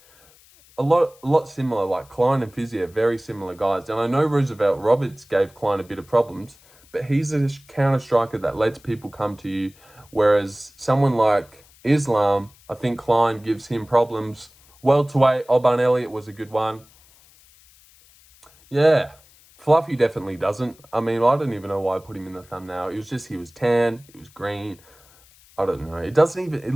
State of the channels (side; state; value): left; noise; hiss, 28 dB below the sound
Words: a lot similar. Like Klein and Fiziev, very similar guys. And I know Roosevelt Roberts gave Klein a bit of problems, but he's a counter striker that lets people come to you. Whereas someone like Islam, I think Klein gives him problems. Welterweight, Alban Elliott was a good one. Yeah, Fluffy definitely doesn't. I mean, I don't even know why I put him in the thumbnail. It was just he was tan, he was green. I don't know. It